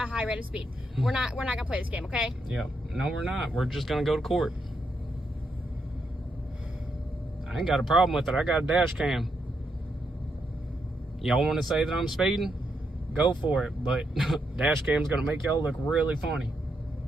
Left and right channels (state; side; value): normal; both; correlation 0.80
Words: high rate of speed. We're not gonna play this game, okay? Yeah. No, we're not. We're just going to go to court. I ain't got a problem with it. I got a dash cam. Y'all want to say that I'm speeding? Go for it. But dash cam's going to make y'all look really funny.